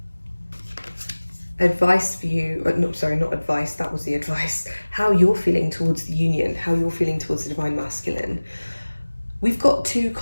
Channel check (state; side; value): inverted; both; correlation -1.00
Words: Advice for you, no, sorry, not advice, that was the advice. How you're feeling towards the union, how you're feeling towards the divine masculine. We've got two